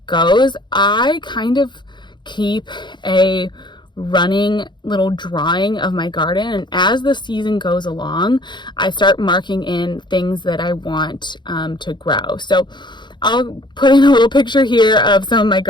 goes, I kind of keep a running little drawing of my garden, and as the season goes along, I start marking in things that I want to grow. So I'll put in a little picture here of some of my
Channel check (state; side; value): late; right; 0.22 ms